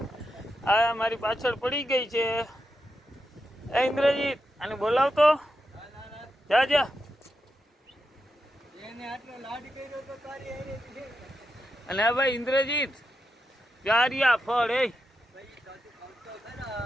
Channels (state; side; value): normal; both; correlation 0.87